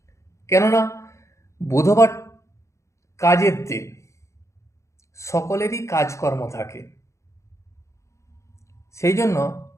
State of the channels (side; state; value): right; late; 0.14 ms